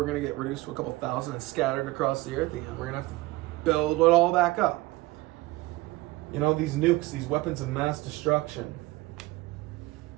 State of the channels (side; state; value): left; quieter; 19.8 dB